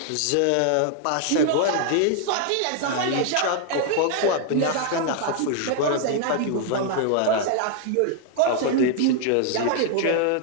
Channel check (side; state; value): both; different; correlation 0.00